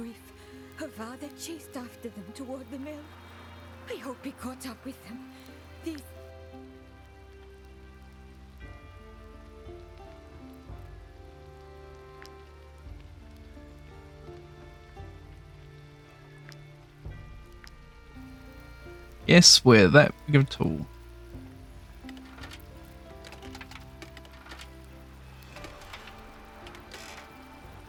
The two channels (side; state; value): both; identical; correlation 1.00